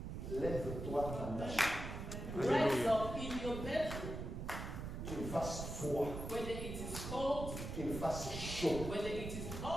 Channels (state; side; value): noise; right; rumble, 6 dB below the sound